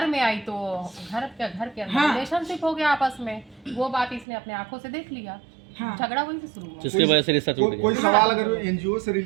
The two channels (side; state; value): left; drops out; at 4.2 s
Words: तो घर के अंदर रिलेशनशिप हो गया आपस में। वो बात इसने अपने आंखों से देख लिया, हाँ। झगड़ा वहीं से शुरू हुआ। जिसकी वजह से रिश्ता टूट कोई गया। सवाल अगर एनजीओ से